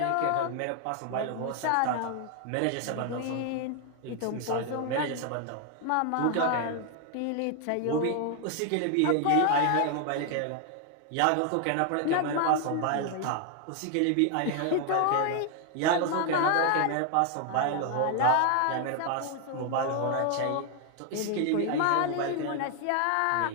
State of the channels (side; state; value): both; different; correlation 0.00